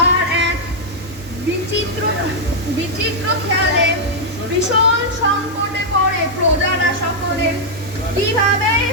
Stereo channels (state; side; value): normal; both; correlation -0.03